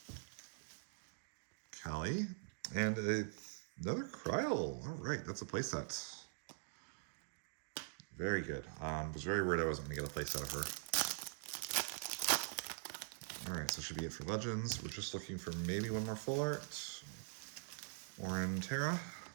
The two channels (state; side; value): silent; left; digital silence